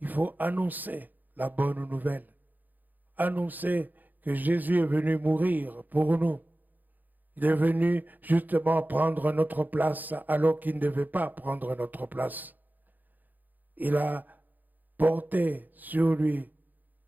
faut annoncer la bonne nouvelle. Annoncer que Jésus est venu mourir pour nous. Il est venu justement prendre notre place alors qu'il ne devait pas prendre notre place. Il a porté sur lui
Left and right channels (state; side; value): late; left; 0.085 ms